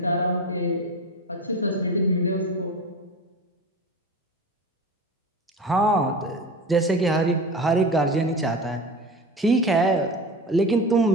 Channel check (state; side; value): normal; both; correlation 0.30